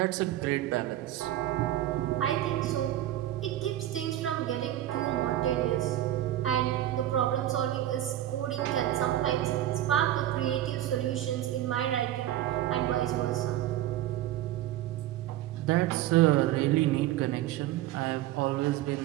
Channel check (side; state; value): left; quieter; 13.4 dB